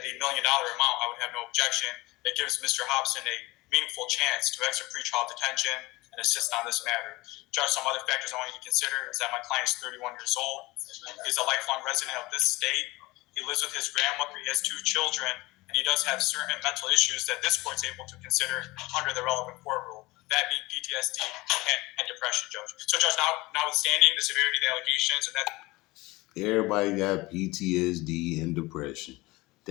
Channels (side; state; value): right; quieter; 21.4 dB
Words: $1 million amount, I would have no objection. It gives Mr. Hobson a meaningful chance to exit pretrial detention and assist on this matter. Judge, some other factors I want you to consider is that my client is 31 years old. He's a lifelong resident of this state. He lives with his grandmother. He has 2 children, and he does have certain mental issues that this court's able to consider under the relevant court rule. That being PTSD and depression, Judge. So, Judge, notwithstanding the severity of the allegations and that. Everybody got PTSD and depression.